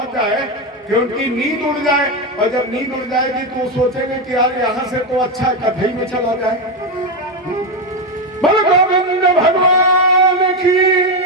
जाए कि उनकी नींद उड़ जाए, और जब नींद उड़ जाएगी तो वो सोचेंगे कि यार यहाँ से तो अच्छा कथई में चला जाए। बोलो गोविंद भगवान की।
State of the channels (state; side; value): normal; both; correlation 0.10